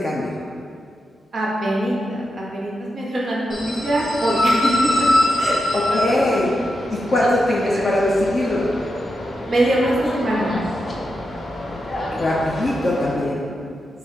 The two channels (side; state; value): both; normal; correlation 0.88